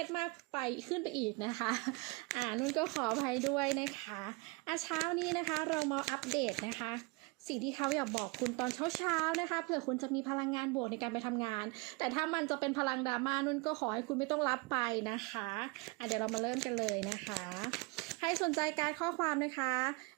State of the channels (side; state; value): left; quieter; 27.8 dB